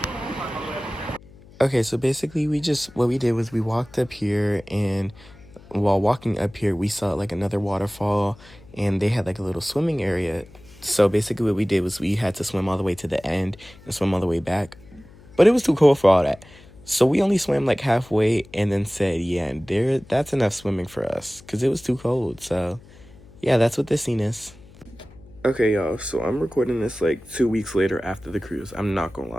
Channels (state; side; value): noise; left; hum, 23 dB below the sound